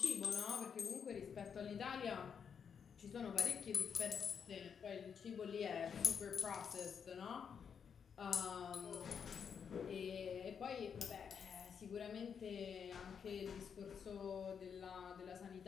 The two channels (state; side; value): quieter; right; 7.0 dB